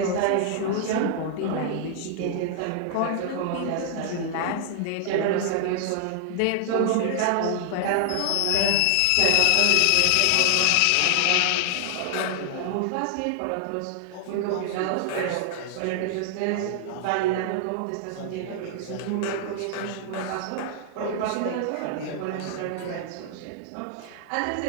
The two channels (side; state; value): both; different; correlation 0.00